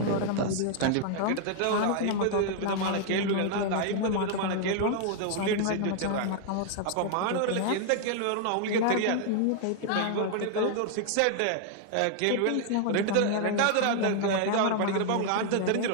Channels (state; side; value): different; both; correlation 0.00